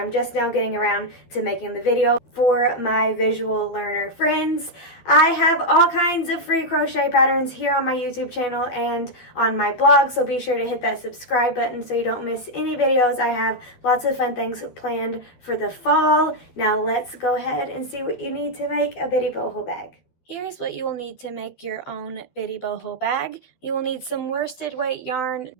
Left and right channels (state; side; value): late; right; 12 ms